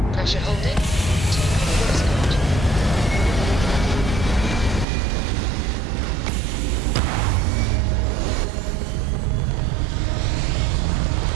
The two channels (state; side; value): drops out; left; at 4.9 s